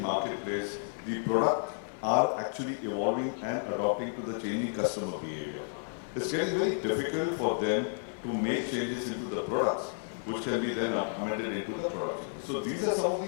marketplace, the product are actually evolving and adopting to the changing customer behavior. It's getting very difficult for them to make changes into the products, which can be then amended into the product. So these are some of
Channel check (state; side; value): silent; right; digital silence